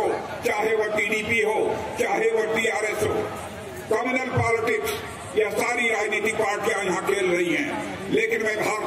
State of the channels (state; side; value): identical; both; correlation 1.00